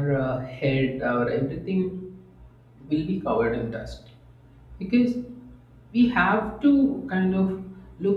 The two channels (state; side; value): identical; both; correlation 1.00